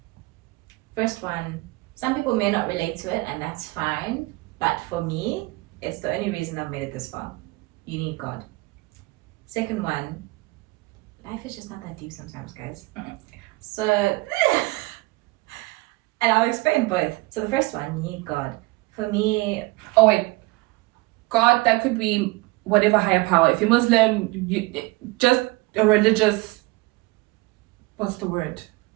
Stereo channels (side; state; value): left; quieter; 22.9 dB